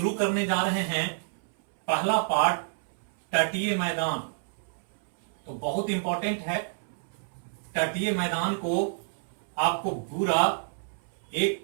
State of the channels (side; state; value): left; silent; 59 dB below the other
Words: करने जा रहे हैं पहला पार्ट तटीय मैदान। तो बहुत इंपॉर्टेंट है, तटीय मैदान को आपको पूरा एक